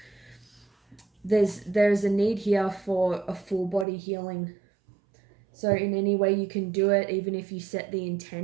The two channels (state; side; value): drops out; left; at 3.9 s